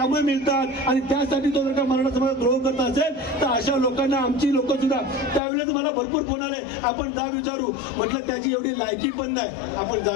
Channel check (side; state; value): right; drops out; at 5.4 s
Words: मिळतात आणि त्यासाठी तो जर का मराठा समाजात द्रोह करत असेल तर अशा लोकांना आमची लोक सुद्धा त्यावेळेस मला भरपूर फोन आले, आपण जा विचारू. म्हटलं त्याची एवढी लायकी पण नाही, आपण जा